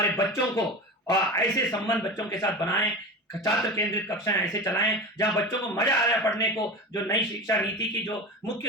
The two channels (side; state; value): both; normal; correlation 0.29